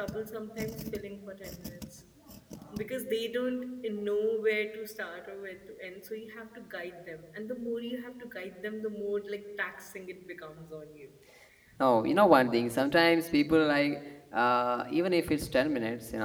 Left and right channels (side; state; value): both; identical; correlation 1.00